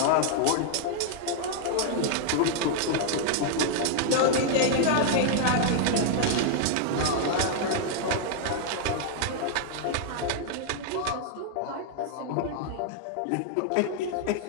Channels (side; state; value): both; different; correlation -0.01